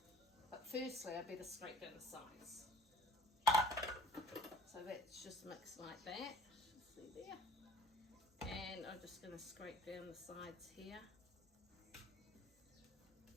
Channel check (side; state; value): both; normal; correlation 0.52